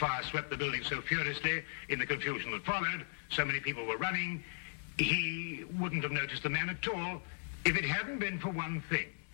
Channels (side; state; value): right; silent; 53 dB below the other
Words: swept the building so furiously in the confusion that followed. So many people were running. He wouldn't have noticed the man at all if it hadn't been for one thing.